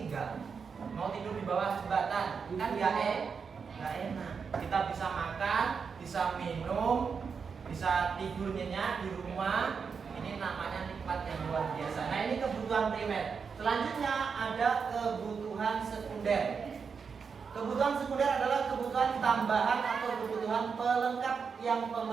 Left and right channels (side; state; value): left; quieter; 5.8 dB